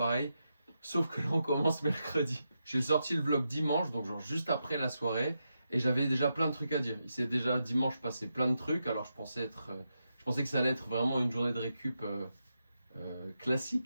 sauf que là on commence mercredi. J'ai sorti le vlog dimanche, donc genre juste après la soirée, et j'avais déjà plein de trucs à dire. Il s'est déjà dimanche passé plein de trucs, alors je pensais que ça allait être vraiment une journée de récup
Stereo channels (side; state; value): both; inverted; correlation -0.86